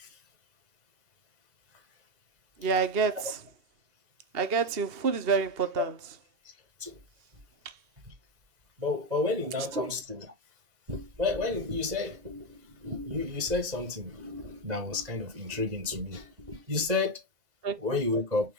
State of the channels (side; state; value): left; late; 2.0 ms